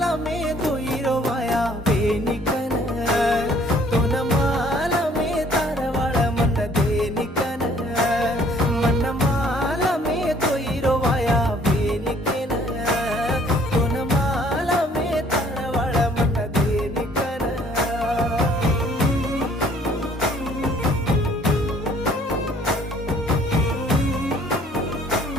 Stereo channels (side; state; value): both; normal; correlation 0.59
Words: में धोईरो वाया बेनिकन तो न माल में तारवाळ मन देनिकन मन माल में धोईरो वाया बेनिकन तो न माल में तारवाळ मन देनिकन